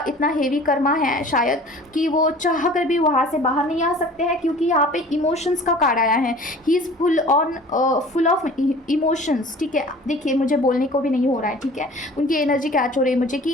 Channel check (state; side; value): normal; both; correlation 0.45